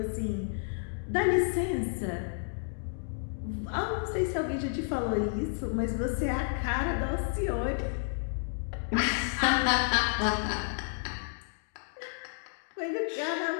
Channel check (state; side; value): silent; right; digital silence